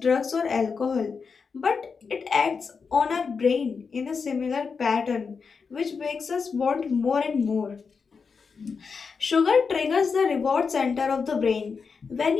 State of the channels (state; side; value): quieter; right; 5.4 dB